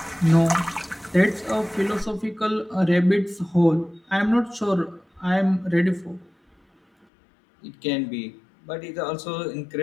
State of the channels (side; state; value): right; drops out; at 7.1 s